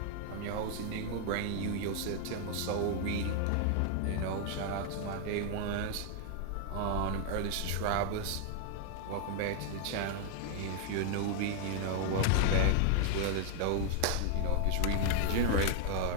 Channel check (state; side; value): different; both; correlation 0.00